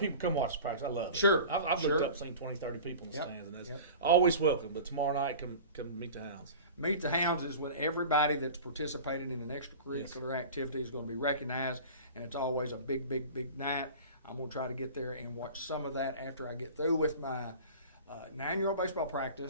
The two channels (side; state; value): both; inverted; correlation -0.37